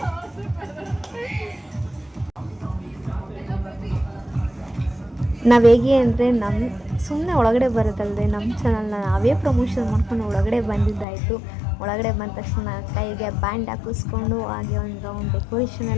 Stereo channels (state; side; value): drops out; right; at 11.1 s